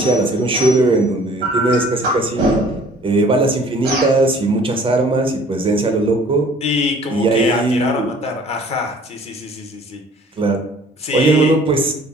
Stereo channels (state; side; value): normal; both; correlation 0.53